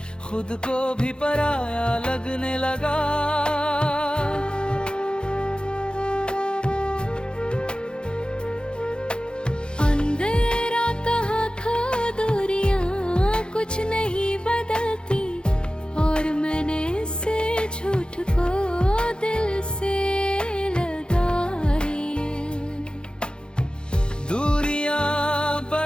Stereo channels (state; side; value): late; right; 0.050 ms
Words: खुद को भी पराया लगने लगा। अंधेरा कहाँ खो दूरियां कुछ नहीं बदलती और मैंने इसे झूठ को दिल से लगाई। दूरियां